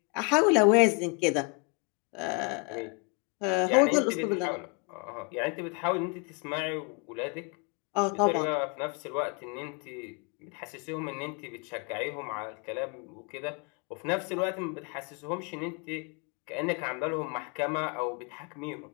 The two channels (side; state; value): right; quieter; 33.3 dB